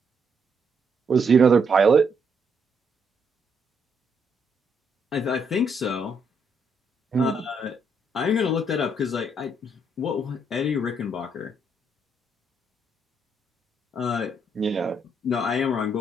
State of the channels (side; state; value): both; normal; correlation 0.74